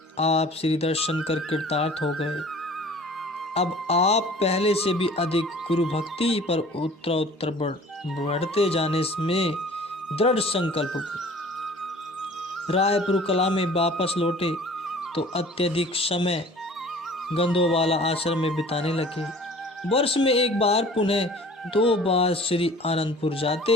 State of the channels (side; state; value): both; normal; correlation 0.47